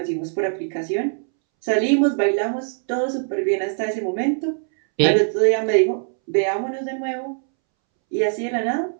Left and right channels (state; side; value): silent; left; 64 dB below the other